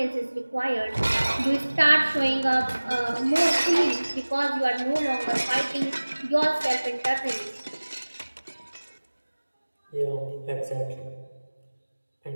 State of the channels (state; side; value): inverted; both; correlation -1.00